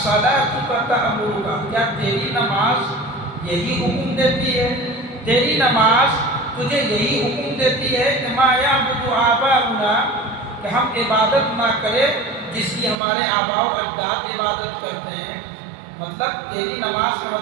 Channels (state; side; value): drops out; left; at 13.0 s